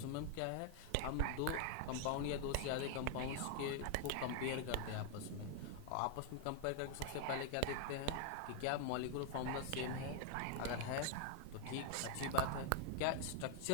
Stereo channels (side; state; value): both; different; correlation 0.00